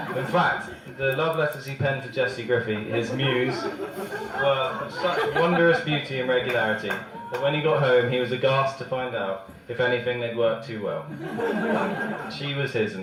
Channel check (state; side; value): identical; both; correlation 1.00